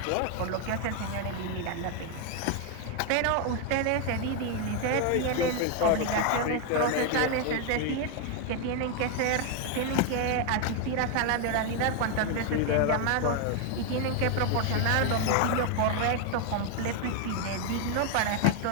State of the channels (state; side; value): different; both; correlation 0.01